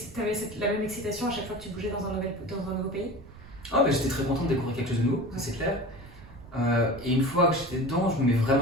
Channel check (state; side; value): noise; right; rumble, 18 dB below the sound